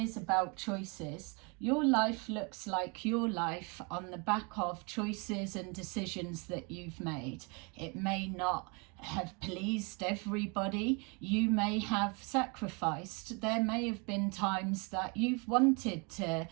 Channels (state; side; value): quieter; left; 32.0 dB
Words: about choices. Your life looks like your life on the back of choices and decisions that you've made. It may not have pleased everybody. You may have sacrificed. There may have been times that you've wanted to